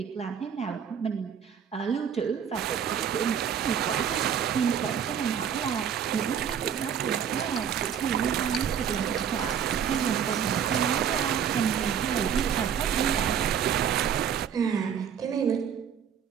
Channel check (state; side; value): quieter; left; 8.2 dB